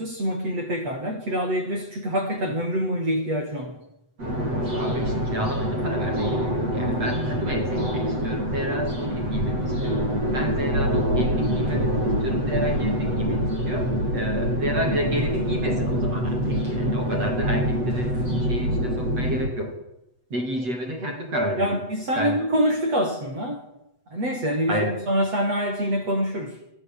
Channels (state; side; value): late; left; 8.0 ms